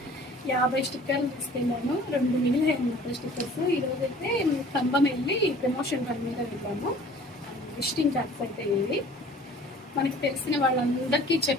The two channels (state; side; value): normal; both; correlation 0.49